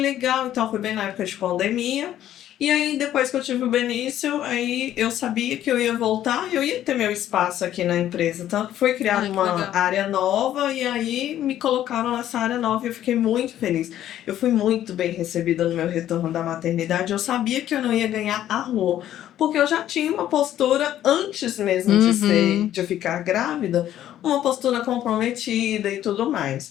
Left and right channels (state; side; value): quieter; right; 11.9 dB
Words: então foi bem na época de pandemia. E aí, depois que eu tive o Benício, aí eu sabia que eu ia voltar, eu ia ter meu espaço aqui na empresa. Tanto que foi criada Ai, que uma legal. área nova e aí me colocaram nessa área nova e eu fiquei muito feliz. Eu fui muito bem recebida no meu retorno da maternidade. Eu sabia que eu não ia ganhar a rua, porque eu já tinha uma postura antes mesmo de ficar grávida, uma postura comprometida e tudo